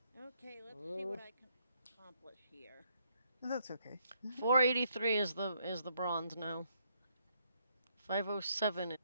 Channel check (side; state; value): both; inverted; correlation -0.73